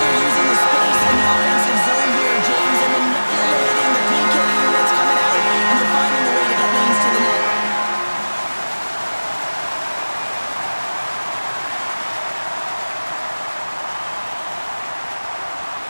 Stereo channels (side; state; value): both; inverted; correlation -1.00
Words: using the space in the offensive zone here, James, and manipulating the PK units coming out, and they're finding the way to get lanes to the net.